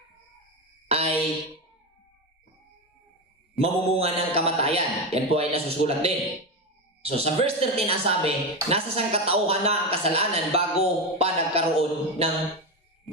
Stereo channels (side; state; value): both; normal; correlation 0.15